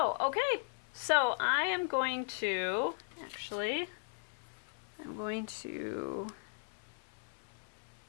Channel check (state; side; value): silent; right; 53 dB below the other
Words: Okay, so I am going to, I'm going to